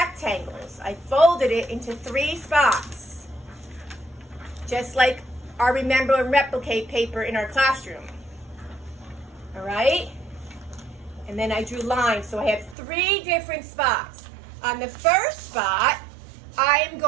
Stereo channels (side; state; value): left; drops out; at 12.8 s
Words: I folded it into 3 spots. Just like our Remember and Replicate paper in our classroom. All right? And then I drew lines, so I have 3 different spots. On the first spot, I am